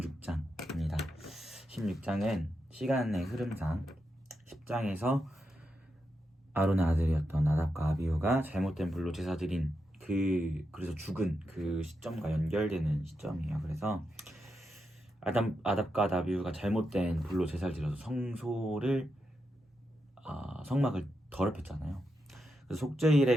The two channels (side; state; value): both; normal; correlation 0.86